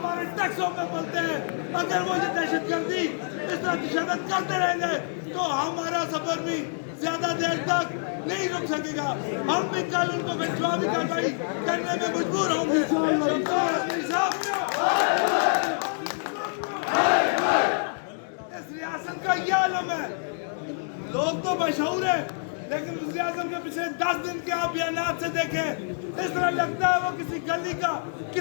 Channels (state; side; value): silent; right; 60 dB below the other